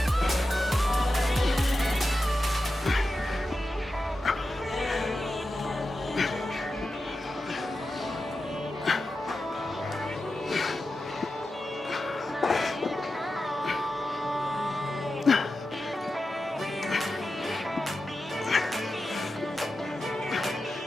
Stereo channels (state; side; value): normal; both; correlation 0.91